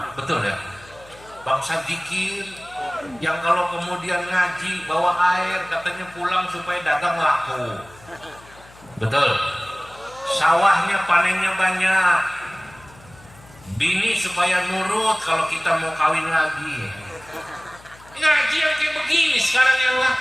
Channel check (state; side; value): noise; left; hum, 24 dB below the sound